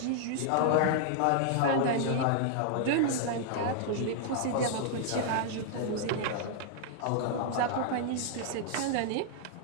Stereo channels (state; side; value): different; both; correlation -0.01